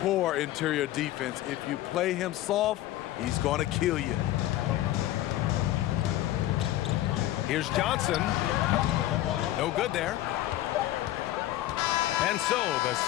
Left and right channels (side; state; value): right; quieter; 14.6 dB